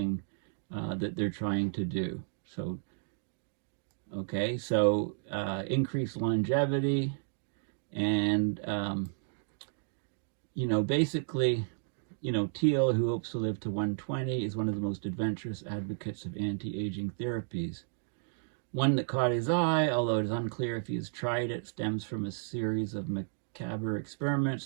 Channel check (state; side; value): silent; left; digital silence